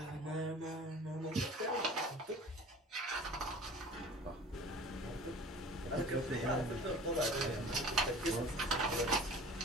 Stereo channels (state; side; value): normal; both; correlation 0.43